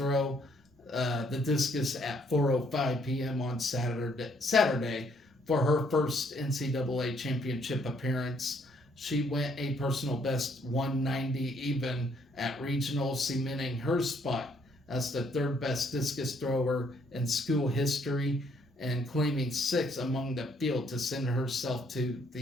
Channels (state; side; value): normal; both; correlation 0.68